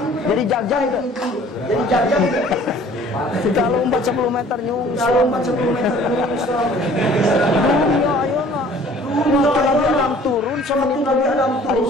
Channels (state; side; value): normal; both; correlation 0.52